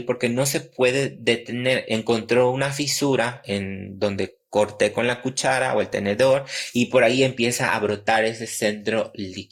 porque no se puede detener. Encontró una fisura en donde corté con la cuchara o el tenedor y por ahí empieza a brotar ese centro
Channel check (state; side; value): identical; both; correlation 1.00